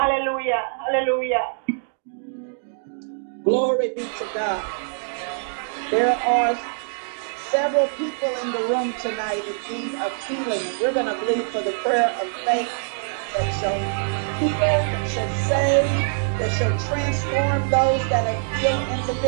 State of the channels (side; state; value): left; silent; digital silence